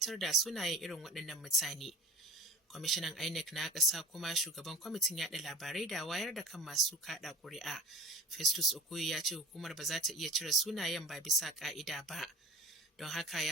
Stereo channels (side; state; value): both; normal; correlation 0.41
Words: da sunayen irin waɗannan mutane. Kwamishinan Inec na ƙasa kuma shugaban kwamitin yaɗa labarai da wayar da kan masu kaɗa ƙuri'a, Festus Okoye ya ce hukumar ba za ta iya cire sunayen ba bisa ƙa'ida ba. Don haka